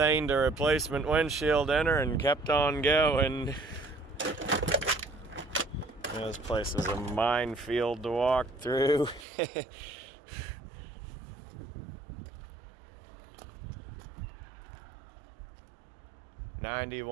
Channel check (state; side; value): drops out; left; at 9.2 s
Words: a replacement windshield in her and kept on going. This place is a minefield to walk through.